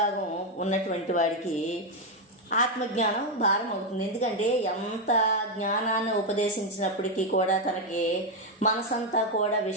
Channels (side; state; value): both; normal; correlation 0.05